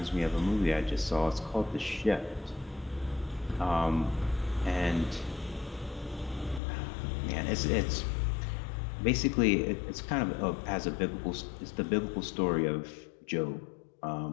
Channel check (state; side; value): drops out; right; at 6.6 s